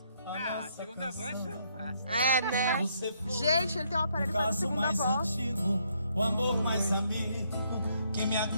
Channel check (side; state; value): both; inverted; correlation -0.72